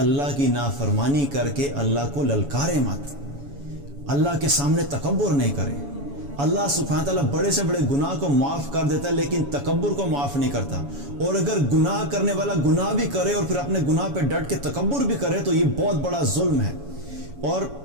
کی نافرمانی کر کے اللہ کو للکارے مت، اللہ کے سامنے تکبر نہیں کرے۔ اللہ سبحانہ تعالیٰ بڑے سے بڑے گناہ کو معاف کر دیتا ہے، لیکن تکبر کو معاف نہیں کرتا۔ اور اگر گناہ کرنے والا گناہ بھی کرے اور پھر اپنے گناہ پہ ڈٹ کے تکبر بھی کرے تو یہ بہت بڑا ظلم ہے۔ اور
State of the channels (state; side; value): late; left; 7.1 ms